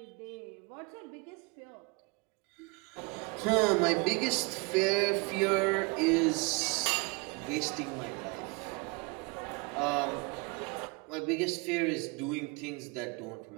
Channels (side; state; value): left; quieter; 28.7 dB